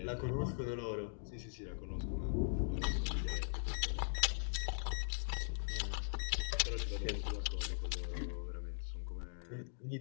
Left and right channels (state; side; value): silent; right; digital silence